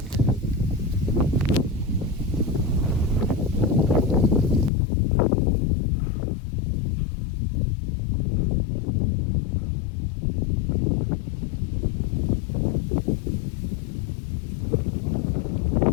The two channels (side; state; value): right; drops out; at 4.7 s